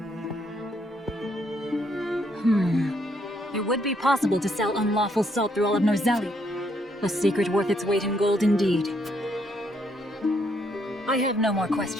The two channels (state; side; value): normal; both; correlation 0.72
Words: It would be possible to sell unlawful salt through all of Norzelia. A secret worth its weight in gold indeed. I have no more